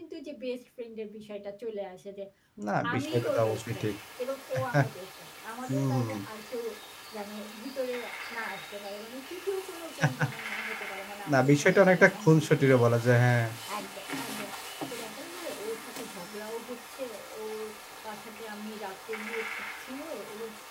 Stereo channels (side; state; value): both; identical; correlation 1.00